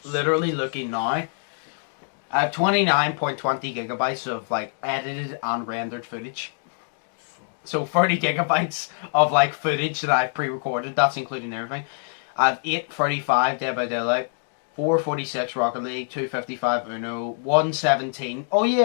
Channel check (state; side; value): silent; right; digital silence